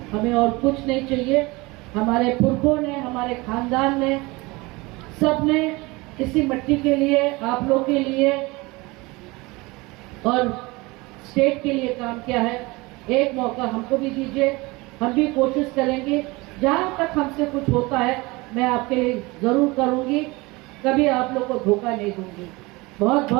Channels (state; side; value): quieter; left; 23.5 dB